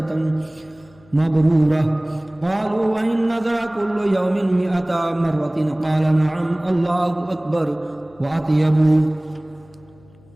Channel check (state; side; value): noise; left; hum, 28 dB below the sound